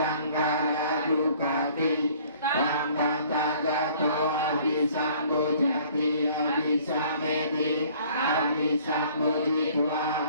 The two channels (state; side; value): inverted; both; correlation -0.55